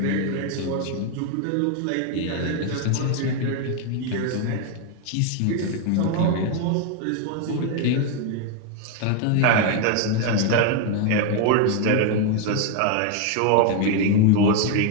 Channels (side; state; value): both; different; correlation 0.01